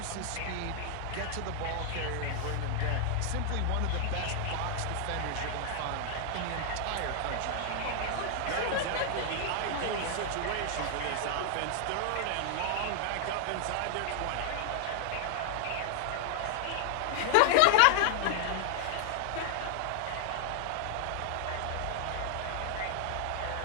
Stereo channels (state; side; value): different; both; correlation 0.00